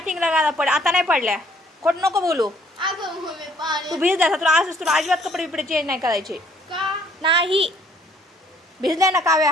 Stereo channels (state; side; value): normal; both; correlation 0.62